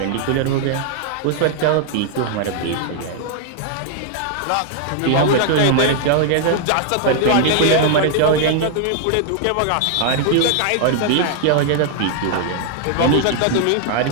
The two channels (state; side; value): different; both; correlation 0.00